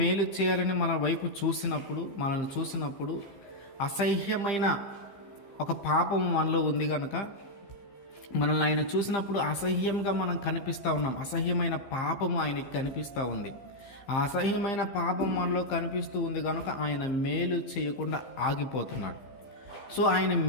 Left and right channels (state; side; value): late; right; 15 ms